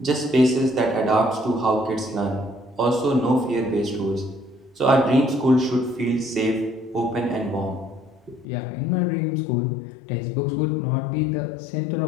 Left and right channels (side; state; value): right; drops out; at 8.5 s